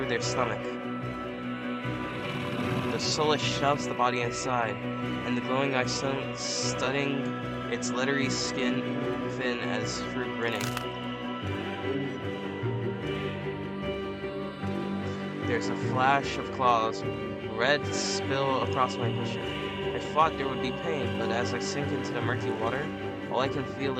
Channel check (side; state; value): both; identical; correlation 1.00